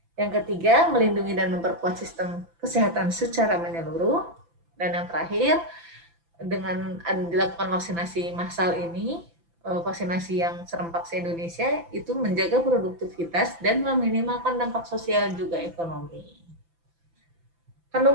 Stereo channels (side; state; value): left; late; 5.9 ms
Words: Yang ketiga, melindungi dan memperkuat sistem kesehatan secara menyeluruh. Dan yang terakhir, dengan dilakukan vaksinasi massal ini, vaksinasi yang serempak se-Indonesia, itu menjaga produktivitas dan meminimalkan dampak sosial juga ekonomi.